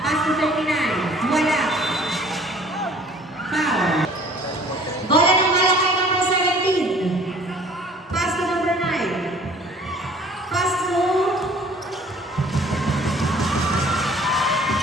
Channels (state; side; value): normal; both; correlation 0.52